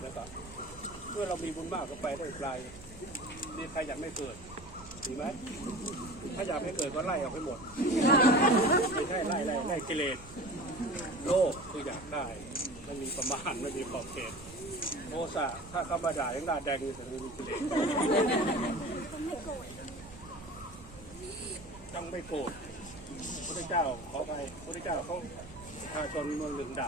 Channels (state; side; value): noise; right; hum, 21 dB below the sound